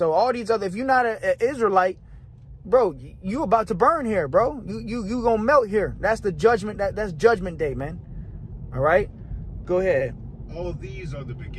all these other, if you're not an Israelite, bro, you about to burn here, bro. You going to melt here. That's the judgment. That's judgment day, man. All right. Go ahead. All these are the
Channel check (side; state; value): both; identical; correlation 1.00